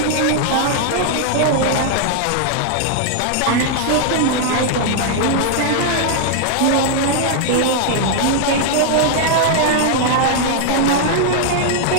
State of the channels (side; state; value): both; different; correlation 0.00